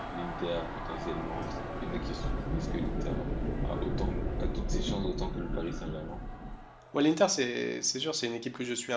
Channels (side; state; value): both; identical; correlation 1.00